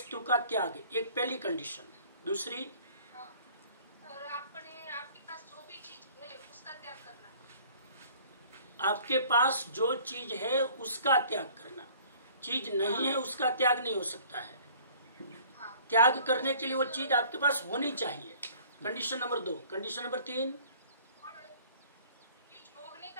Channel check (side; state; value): both; inverted; correlation -0.52